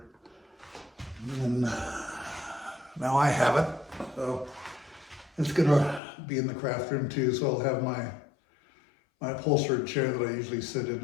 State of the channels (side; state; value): right; drops out; at 6.0 s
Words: And now I have it. So it's gonna be in the craft room too. So I'll have my upholstered chair that I usually sit